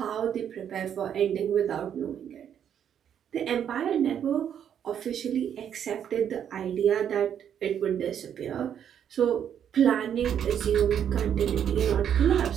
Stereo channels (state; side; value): quieter; left; 9.0 dB